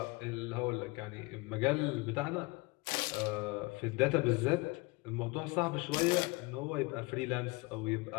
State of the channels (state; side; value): quieter; right; 25.5 dB